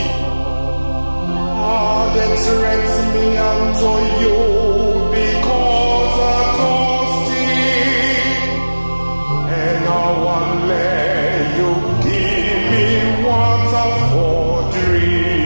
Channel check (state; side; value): inverted; both; correlation -1.00